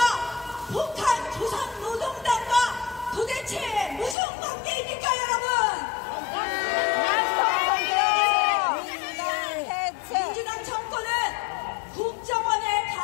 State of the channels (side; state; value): right; drops out; at 4.2 s